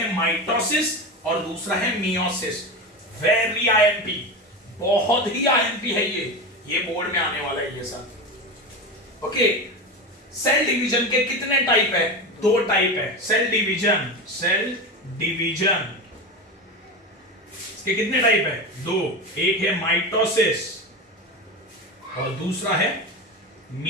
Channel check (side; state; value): both; normal; correlation 0.23